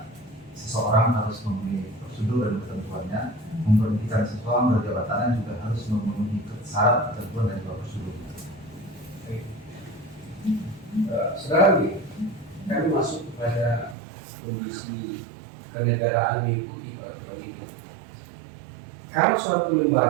seseorang harus memenuhi prosedur dan ketentuannya. Memberhentikan seseorang dari jabatannya juga harus memenuhi syarat, ketentuan, dan juga prosedur. Saudara, kami masuk kepada kondisi kenegaraan mengikuti peraturan ini. Kalau suatu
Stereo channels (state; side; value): drops out; left; at 14.0 s